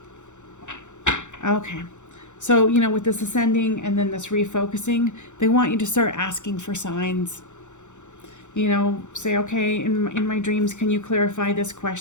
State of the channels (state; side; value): late; right; 0.84 ms